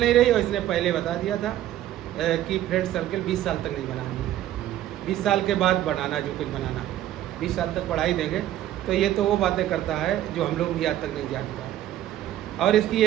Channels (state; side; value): quieter; left; 12.8 dB